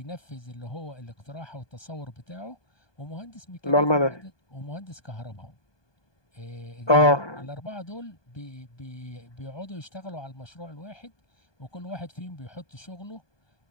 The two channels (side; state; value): right; late; 1.2 ms